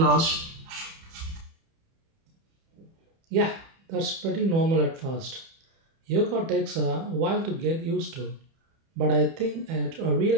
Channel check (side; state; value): left; late; 30 ms